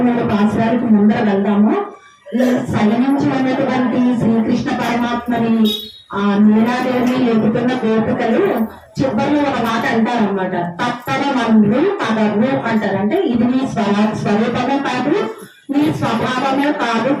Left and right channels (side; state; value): both; identical; correlation 1.00